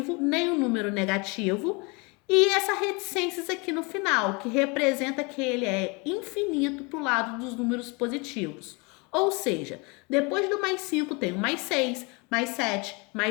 nem um número negativo, e essa reticências aqui no final, que representa que ele é infinito para o lado dos números positivos. Ou seja, depois do mais 5 tem o mais 6, mais 7,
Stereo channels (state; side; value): quieter; right; 29.1 dB